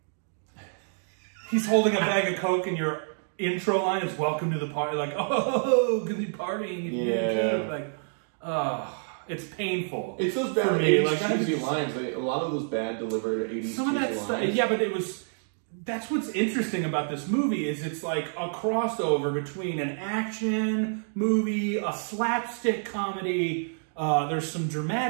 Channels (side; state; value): left; silent; digital silence